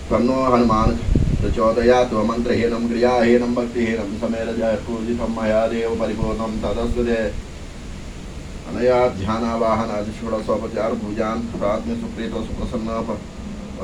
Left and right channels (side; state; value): both; identical; correlation 1.00